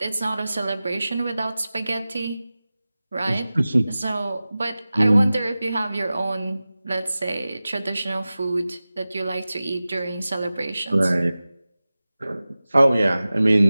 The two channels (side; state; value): both; inverted; correlation -0.96